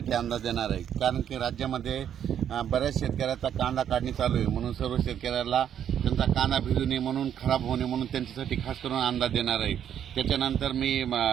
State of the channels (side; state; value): left; quieter; 9.4 dB